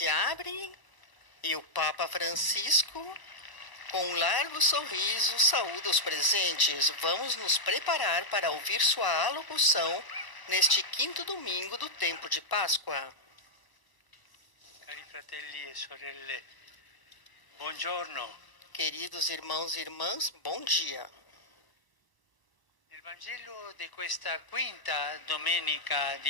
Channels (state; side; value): late; right; 1.0 ms